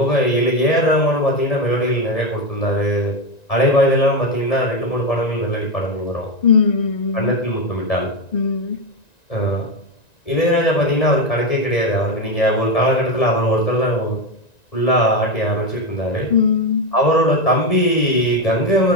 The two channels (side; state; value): right; late; 1.9 ms